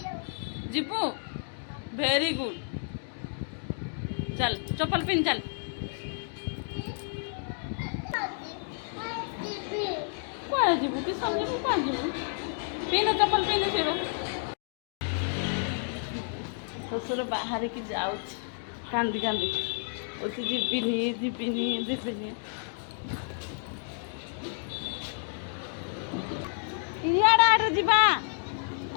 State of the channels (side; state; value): right; silent; 58 dB below the other